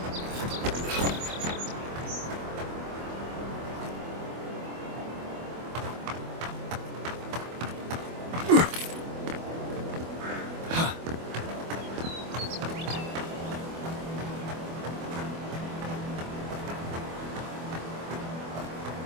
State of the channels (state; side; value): late; left; 24 ms